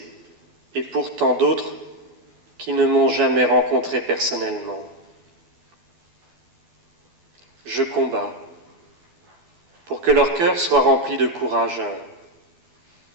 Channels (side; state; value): left; late; 12 ms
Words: et pour tant d'autres qui ne m'ont jamais rencontré personnellement. Je combats pour que leur cœur soit rempli de courage